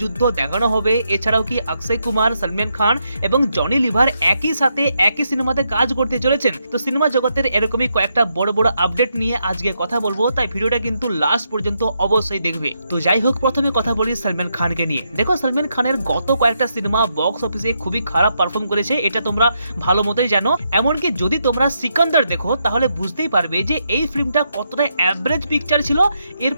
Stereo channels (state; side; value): inverted; both; correlation -0.80